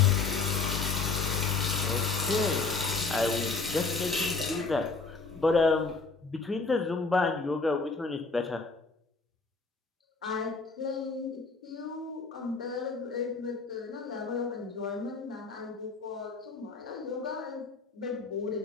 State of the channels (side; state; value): right; quieter; 4.2 dB